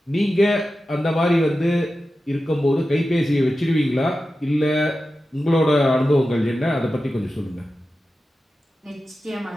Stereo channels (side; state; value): both; normal; correlation 0.93